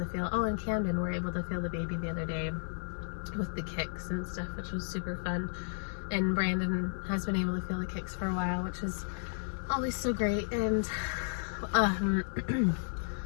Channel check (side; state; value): right; silent; digital silence